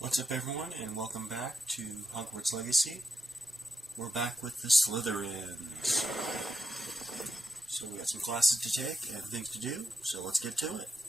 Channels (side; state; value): both; normal; correlation 0.84